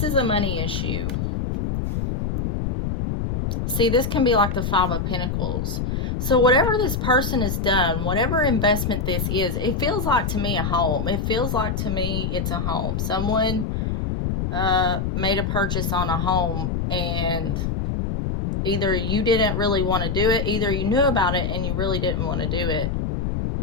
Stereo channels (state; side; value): noise; left; rumble, 1 dB below the sound